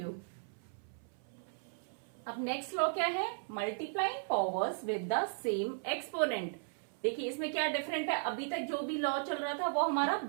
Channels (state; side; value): silent; left; 54 dB below the other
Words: अब नेक्स्ट लॉ क्या है, multiplying powers with the same exponent. देखिए इसमें क्या डिफरेंट है, अभी तक जो भी लॉ चल रहा था वो हमारा